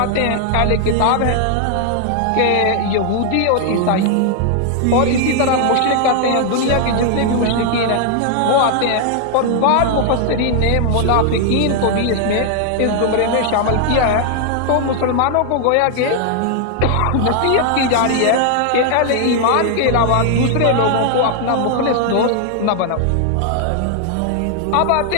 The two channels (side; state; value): both; different; correlation 0.00